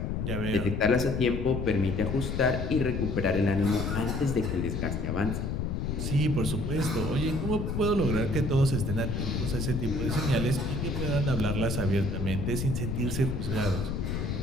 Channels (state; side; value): noise; left; rumble, 2 dB below the sound